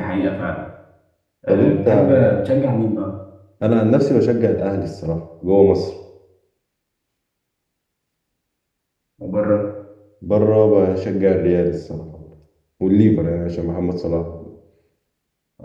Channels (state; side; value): identical; both; correlation 1.00